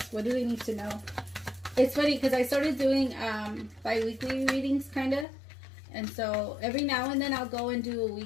What do they need to know? It's funny because I started doing bi-weekly readings, kind of. And so every now and then I'll go and do a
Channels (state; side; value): drops out; right; at 5.2 s